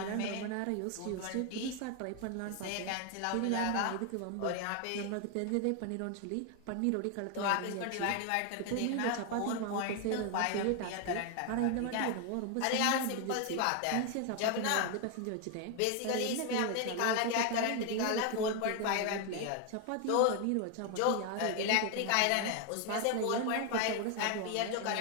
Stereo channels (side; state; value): both; different; correlation 0.01